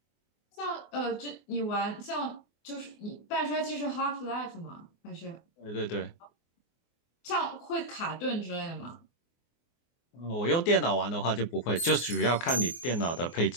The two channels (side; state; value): right; late; 24 ms